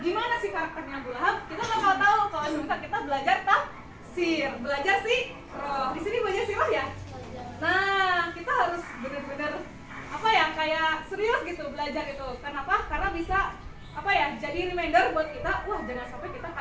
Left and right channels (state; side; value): identical; both; correlation 1.00